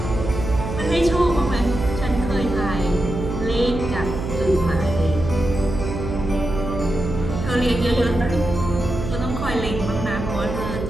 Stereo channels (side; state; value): right; noise; hum, 5 dB below the sound